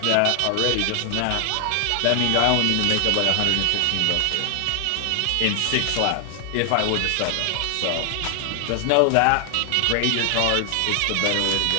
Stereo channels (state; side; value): different; both; correlation 0.00